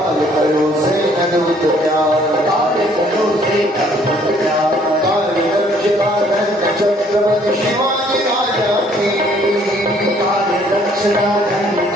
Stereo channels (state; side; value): normal; both; correlation 0.62